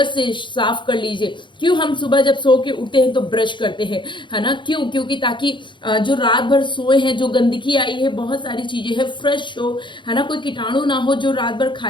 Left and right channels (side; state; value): right; late; 0.23 ms